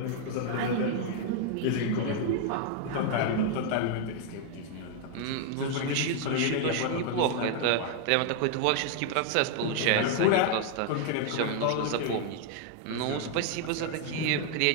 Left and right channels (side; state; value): both; different; correlation 0.00